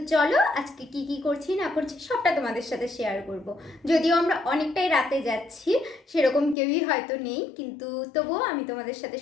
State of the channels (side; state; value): right; drops out; at 6.6 s